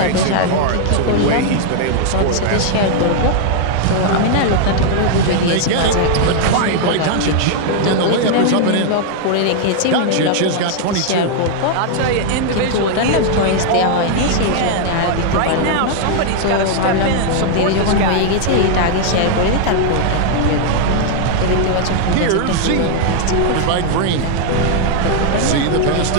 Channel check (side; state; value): both; different; correlation 0.00